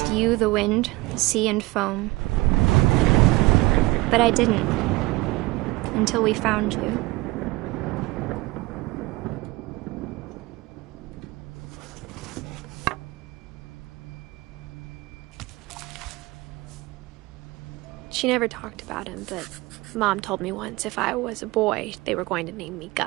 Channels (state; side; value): quieter; left; 21.0 dB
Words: you, the wind, the sea, and foam. But I didn't, until we found you. She never talked about him, but Mom told me once if I was a boy, they were going to name me